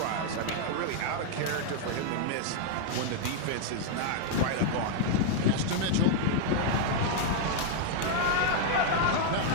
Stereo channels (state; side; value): different; both; correlation 0.00